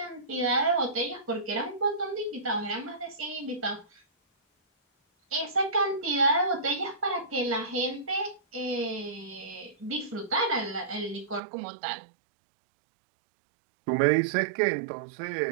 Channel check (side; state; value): left; drops out; at 11.4 s